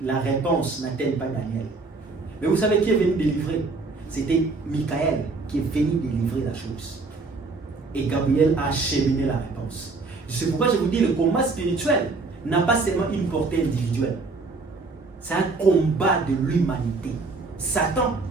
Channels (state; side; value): quieter; left; 3.9 dB